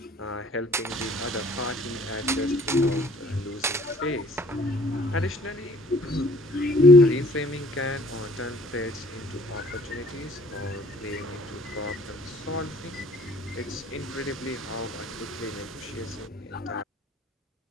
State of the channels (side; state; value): both; normal; correlation 0.55